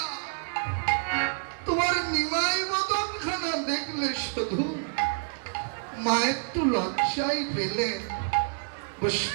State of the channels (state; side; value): silent; left; digital silence